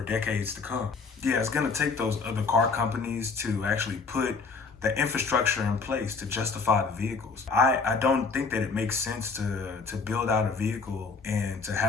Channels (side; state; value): right; quieter; 4.7 dB